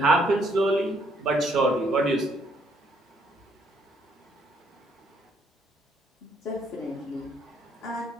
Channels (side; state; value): both; normal; correlation 0.68